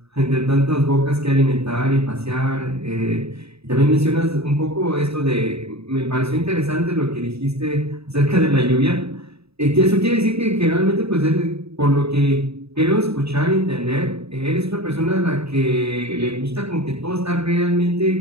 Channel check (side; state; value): left; late; 0.78 ms